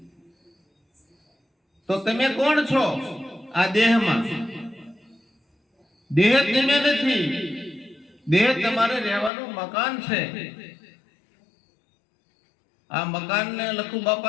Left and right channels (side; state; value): right; drops out; at 9.3 s